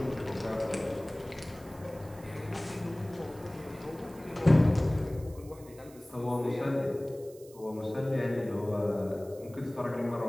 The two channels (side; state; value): right; noise; hiss, 23 dB below the sound